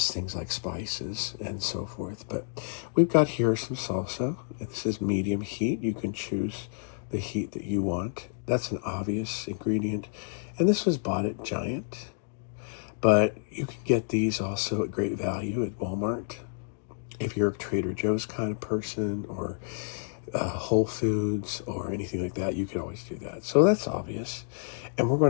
things like spices and so forth. But we've got here some salsa. This is medium heat. You can choose the heat that you want. That's an obvious ingredient. And this was bought at Giant. But you can get these also at great value at Walmart. If you're a Trader Joe's kind of person, or Whole Foods or anything like that, you can always do that. So that's obvious. And we're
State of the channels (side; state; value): right; silent; digital silence